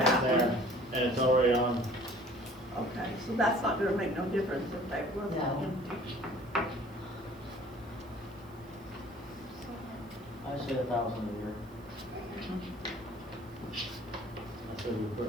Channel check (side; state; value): right; noise; hiss, 28 dB below the sound